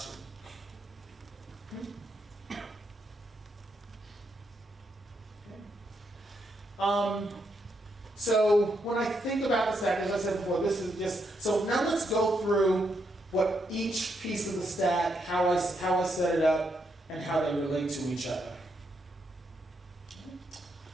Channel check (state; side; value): normal; both; correlation 0.79